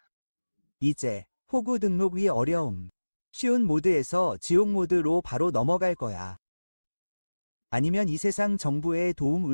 이제 호구 등록이 어려움. 쉬운 모드에서 지옥 모드로 바로 넘어갈 거야. 아니면 이 세상 정부의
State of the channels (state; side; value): inverted; both; correlation -1.00